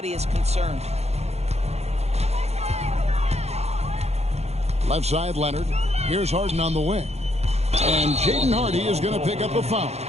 is concerned. Left side, Leonard. Here's Harden on the wing. And Jaden Hardy is going to pick up a foul.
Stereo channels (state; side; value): late; left; 0.31 ms